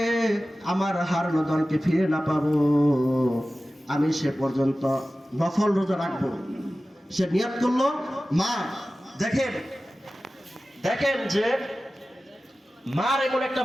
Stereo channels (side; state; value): both; normal; correlation 0.96